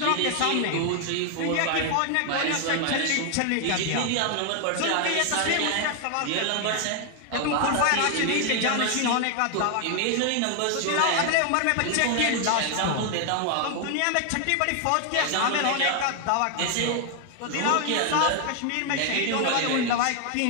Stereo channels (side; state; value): both; different; correlation 0.00